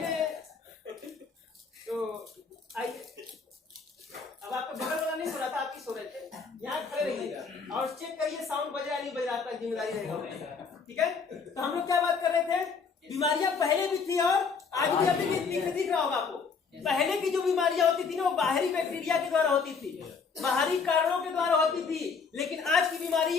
है तो आइए। अब आपका बगल वाला नहीं सो रहा था, आप ही सो रहे थे, यहाँ खड़े रहिएगा और चेक करिए साउंड बज रहा नहीं बज रहा, आपका जिम्मेदारी रहेगा, ठीक है। तो हम लोग क्या बात कर रहे थे, बीमारियां पहले भी थी और आज भी अभी दिख रहा होगा आपको। पहले की जो बीमारियां होती थी ना, वो बाहरी बैक्टीरिया के द्वारा होती थी, बाहरी कारणों के द्वारा होती थी, लेकिन आज की बीमारी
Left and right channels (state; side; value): quieter; right; 5.3 dB